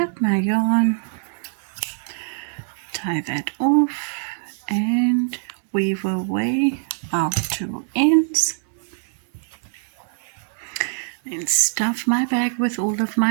my yarn, tie that off, and weave away our 2 ends. Then stuff my bag with all of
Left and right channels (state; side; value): silent; left; digital silence